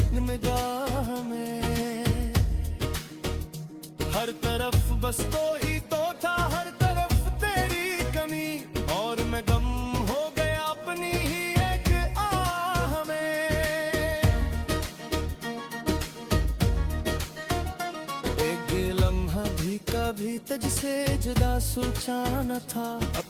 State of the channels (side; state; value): both; identical; correlation 1.00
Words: निगाह में। हर तरफ बस तो ही तो था, हर तरफ तेरी कमी, और मैं गम हो गया अपनी ही एक आह में। एक लम्हा भी कभी तुझसे जुदा सोचा न था,